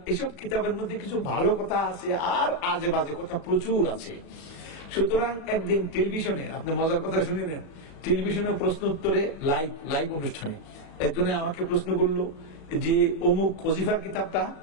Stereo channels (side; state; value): right; late; 36 ms